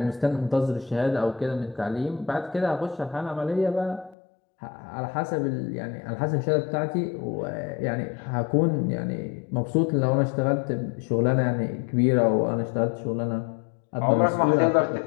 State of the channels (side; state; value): right; drops out; at 4.2 s